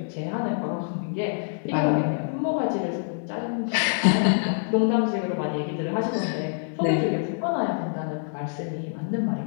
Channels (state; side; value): silent; right; digital silence